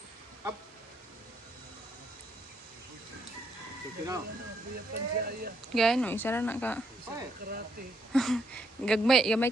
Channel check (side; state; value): both; normal; correlation 0.74